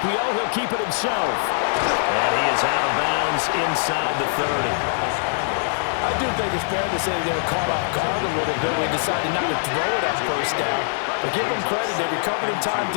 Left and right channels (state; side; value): silent; right; digital silence